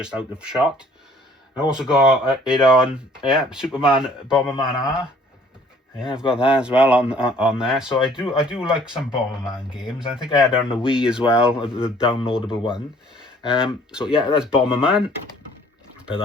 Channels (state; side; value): normal; both; correlation 0.57